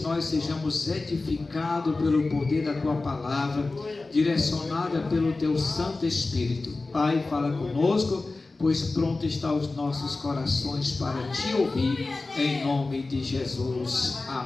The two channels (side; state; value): right; quieter; 3.4 dB